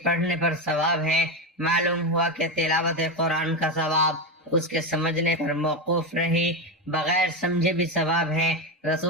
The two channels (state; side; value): normal; both; correlation 0.13